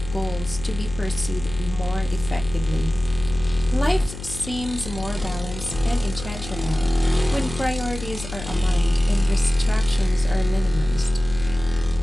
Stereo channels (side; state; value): left; noise; hum, 11 dB below the sound